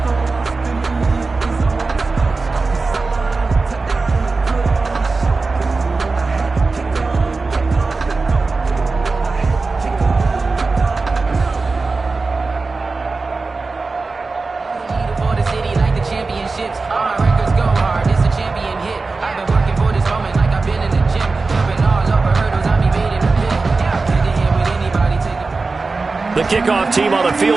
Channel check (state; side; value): quieter; left; 3.9 dB